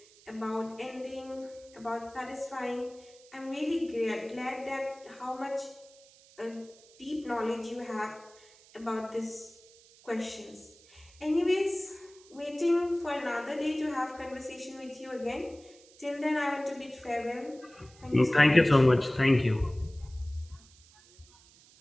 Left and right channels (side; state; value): right; noise; hiss, 25 dB below the sound